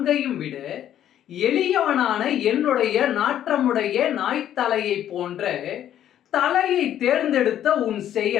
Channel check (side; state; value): right; quieter; 11.0 dB